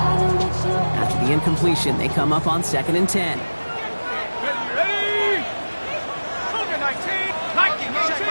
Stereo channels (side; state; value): both; inverted; correlation -1.00